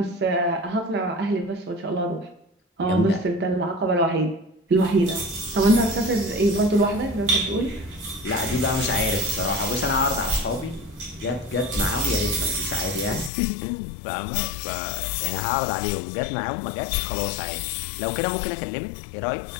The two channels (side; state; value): right; drops out; at 13.3 s